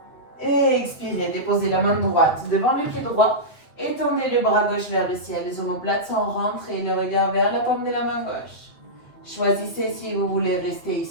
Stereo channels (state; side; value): late; right; 8.0 ms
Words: Expirez. Déposez la main droite devant le pied droit. Étendez le bras gauche vers le ciel. Les omoplates sont rentrées. Le regard vers la paume de la main gauche. Choisissez si vous voulez rester